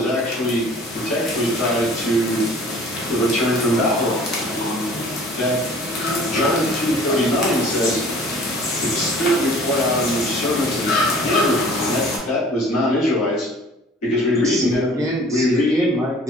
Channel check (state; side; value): normal; both; correlation 0.49